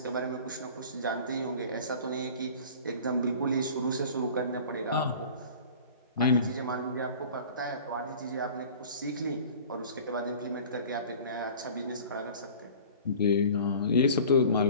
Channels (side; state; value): both; inverted; correlation -0.43